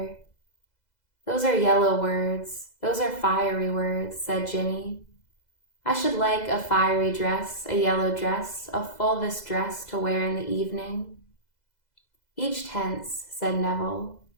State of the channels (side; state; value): right; late; 2.0 ms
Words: Those are yellow words, those are fiery words, said Ginny. I should like a fiery dress, a yellow dress, a fulvous dress to wear in the evening. Each tense, said Neville,